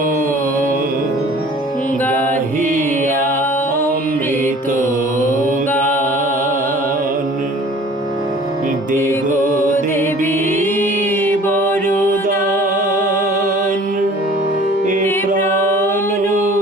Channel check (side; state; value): both; normal; correlation 0.48